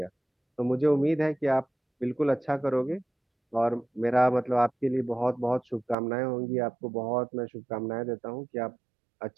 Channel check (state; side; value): drops out; left; at 6.0 s